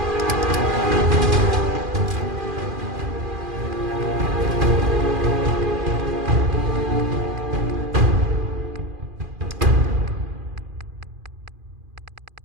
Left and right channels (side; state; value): left; late; 2.4 ms